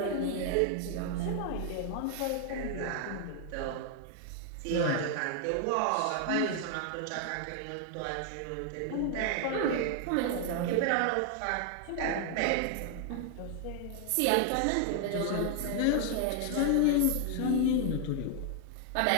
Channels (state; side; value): different; both; correlation 0.00